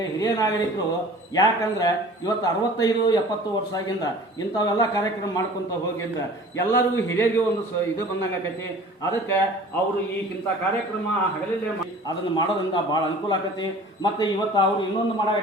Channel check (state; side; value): normal; both; correlation 0.45